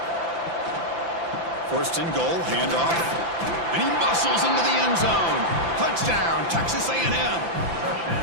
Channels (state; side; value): late; left; 5.9 ms